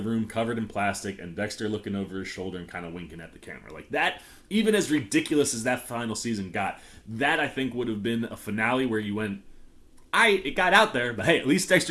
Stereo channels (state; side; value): identical; both; correlation 1.00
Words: covered in plastic and Dexter looking over his shoulder and kind of winking at the camera. Like that, even as ridiculous as that final season got, that I think would have been a finale where you went, it got out there, but hey, at least